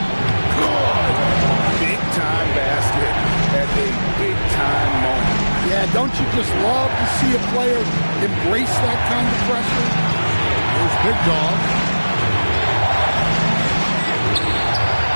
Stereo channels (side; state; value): both; inverted; correlation -1.00